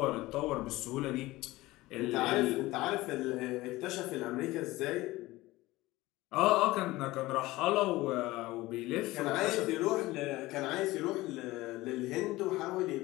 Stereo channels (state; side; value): quieter; right; 19.0 dB